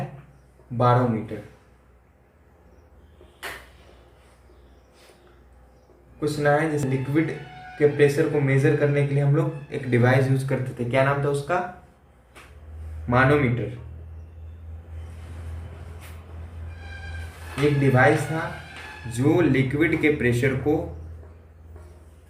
बारोमीटर। कुछ ना है, जैसे लिक्विड के प्रेशर को मेजर करने के लिए हम लोग एक डिवाइस यूज करते थे, क्या नाम था उसका? मानोमीटर। एक डिवाइस था जो लिक्विड के प्रेशर को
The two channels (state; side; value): identical; both; correlation 1.00